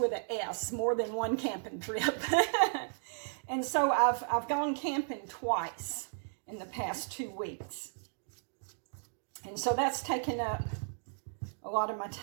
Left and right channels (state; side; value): silent; left; digital silence